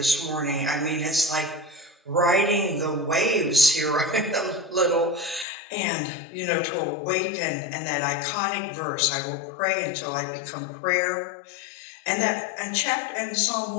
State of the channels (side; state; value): right; drops out; at 5.5 s